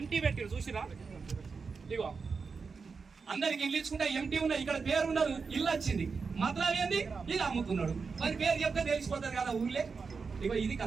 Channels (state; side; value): quieter; left; 5.0 dB